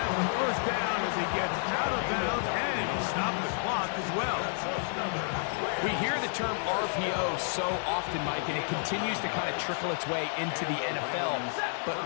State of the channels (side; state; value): right; silent; 58 dB below the other